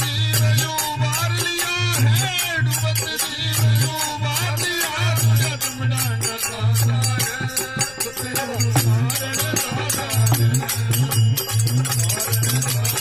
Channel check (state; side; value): noise; left; rumble, 23 dB below the sound